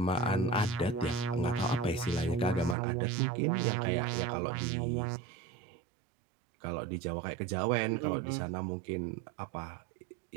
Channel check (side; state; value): left; drops out; at 2.8 s